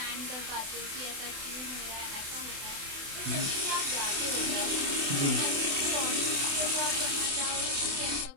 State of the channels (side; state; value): left; late; 28 ms